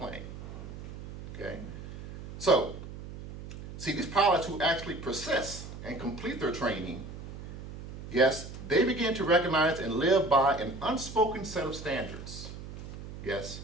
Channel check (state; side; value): noise; right; hum, 11 dB below the sound